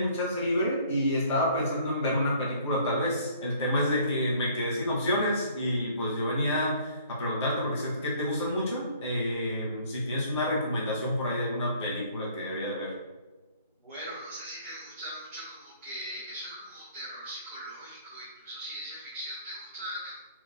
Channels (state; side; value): inverted; both; correlation -0.57